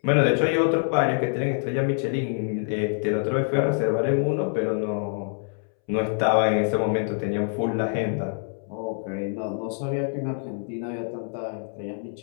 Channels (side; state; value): right; silent; 61 dB below the other